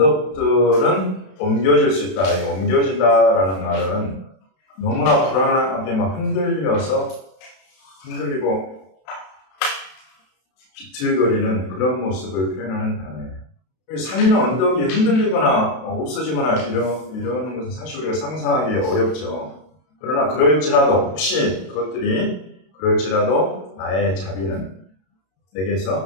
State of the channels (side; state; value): right; late; 32 ms